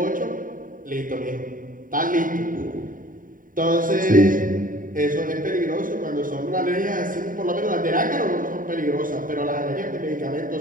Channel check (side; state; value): left; late; 0.39 ms